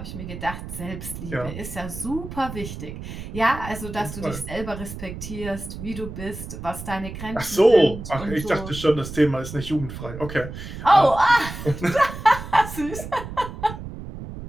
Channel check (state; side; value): noise; right; rumble, 10 dB below the sound